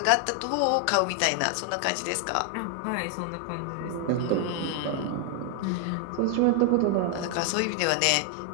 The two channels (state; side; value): different; both; correlation 0.00